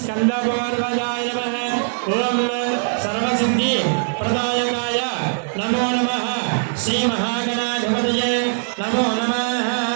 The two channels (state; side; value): silent; left; digital silence